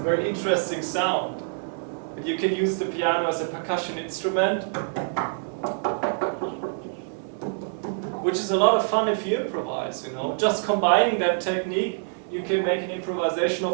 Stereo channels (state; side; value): silent; left; 57 dB below the other